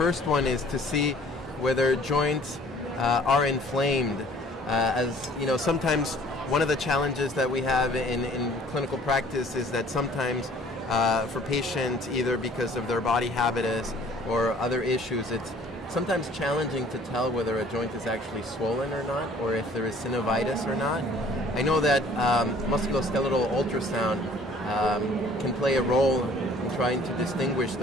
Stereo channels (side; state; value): both; normal; correlation 0.54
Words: one is to see whether joints are inflamed. As you know, sometimes one of the challenges that we have in clinical practice is that sometimes for patients, either because of their body habitus or other issues, it's sometimes challenging to tell whether a joint is actually swollen or not, or if there is synovitis or not. I know that musculoskeletal ultrasound can play a role in trying to distinguish